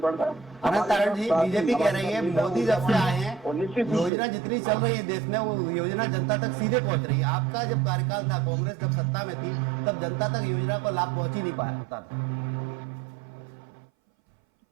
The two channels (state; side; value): drops out; left; at 4.1 s